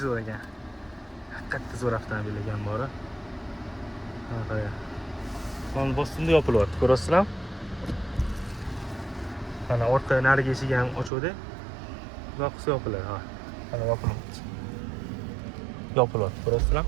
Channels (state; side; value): drops out; left; at 11.1 s